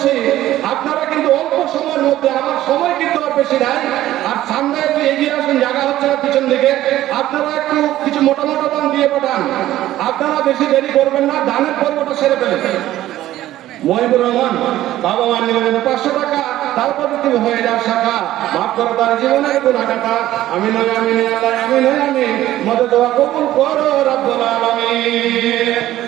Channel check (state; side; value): quieter; left; 14.2 dB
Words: আপনারা কিন্তু অল্প সময়ের মধ্যে, আমার সময় কিন্তু আর বেশি নাই, আর সামনে একটু এগিয়ে আসুন, জায়গা হচ্ছে না পিছন দিকে, আপনারা একটু কিছু মোটা মোটা দান দিয়ে পাঠান। আপনারা বেশি দেরি করবেন না, দানের পর্বটা সেরে ফেলেন। মহিবুর রহমান বাবা মা নিলেন 500 টাকা, তারপর তুমি হয়ে যাও শাখা, মাফ করো তার জীবনের গুনাহগাতা। আমি নয় আমি নয় আল্লাহ আমি নয় আমি, মদদ দোয়া কবুল করো রব্বুল আলামিন।